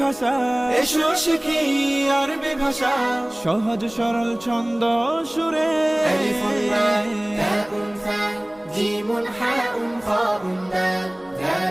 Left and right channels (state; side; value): noise; left; rumble, 30 dB below the sound